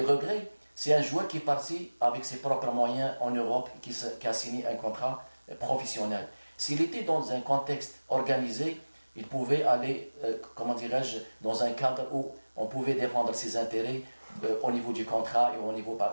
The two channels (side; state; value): both; inverted; correlation -1.00